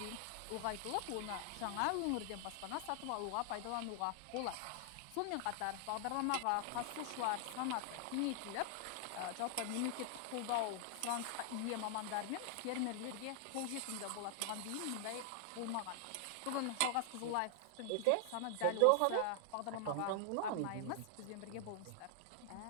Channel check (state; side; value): different; both; correlation 0.00